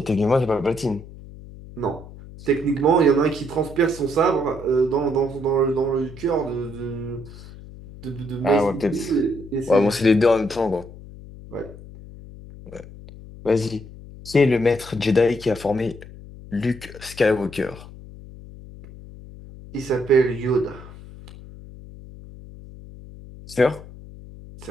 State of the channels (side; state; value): left; noise; hum, 17 dB below the sound